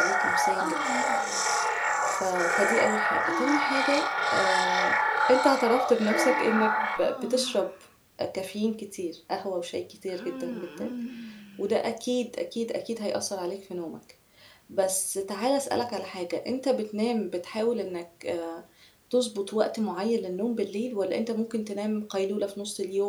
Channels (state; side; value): identical; both; correlation 1.00